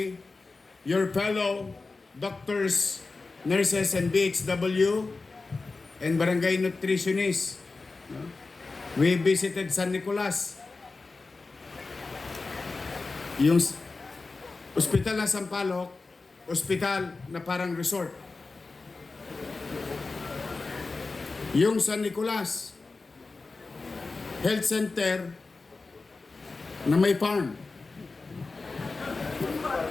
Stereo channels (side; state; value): right; quieter; 3.8 dB